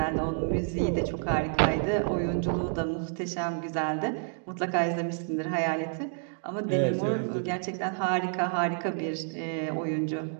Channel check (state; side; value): silent; left; 58 dB below the other